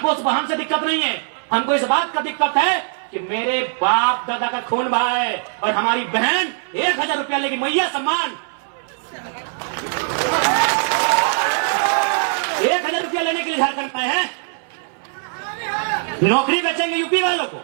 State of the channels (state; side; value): silent; left; 60 dB below the other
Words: उस बहन से दिक्कत नहीं है, हमको इस बात का दिक्कत है कि मेरे बाप दादा का खून बहा है और हमारी बहन 1000 रुपया लेगी, मैया सम्मान। 1000 रुपया लेने के लिए झारखंड में है। नौकरी बेचेंगे यूपी वालों